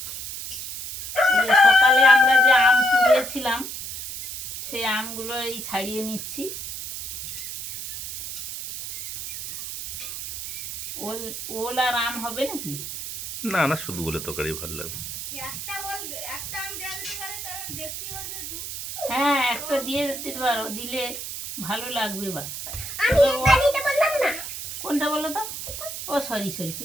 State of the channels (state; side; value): noise; right; hiss, 7 dB below the sound